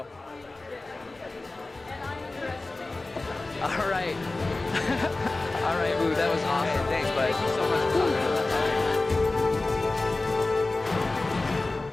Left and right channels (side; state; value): right; quieter; 3.2 dB